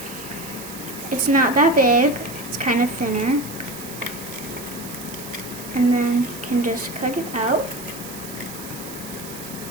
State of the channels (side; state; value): right; noise; hiss, 13 dB below the sound